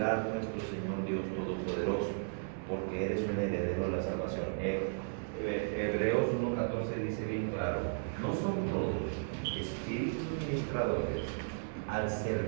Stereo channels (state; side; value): silent; left; 54 dB below the other